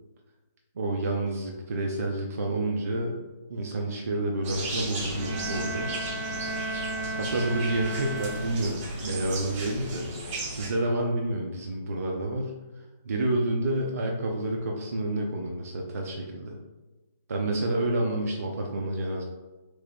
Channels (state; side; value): inverted; both; correlation -0.64